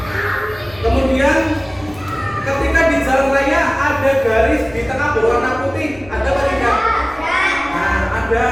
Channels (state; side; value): noise; left; rumble, 22 dB below the sound